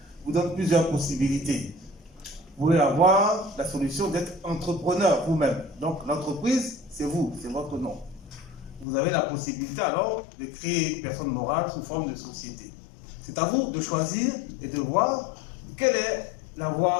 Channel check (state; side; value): drops out; right; at 8.8 s